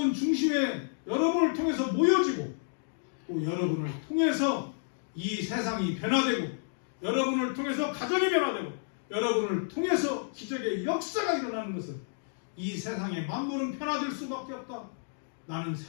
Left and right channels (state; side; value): silent; right; digital silence